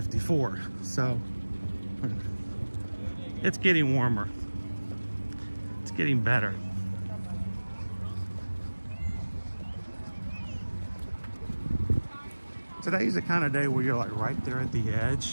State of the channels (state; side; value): inverted; both; correlation -1.00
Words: So it's getting warmer. It's getting better. Today's the kind of day where you're like right there at the